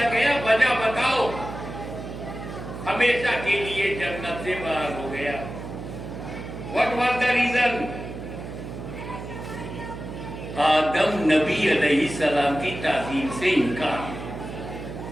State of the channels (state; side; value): noise; right; hum, 9 dB below the sound